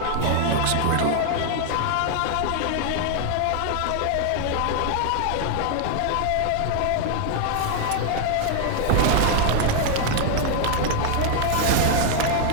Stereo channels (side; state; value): both; different; correlation 0.00